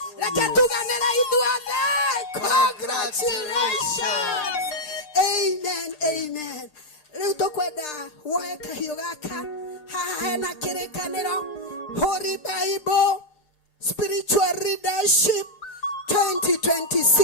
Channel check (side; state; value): right; late; 6.6 ms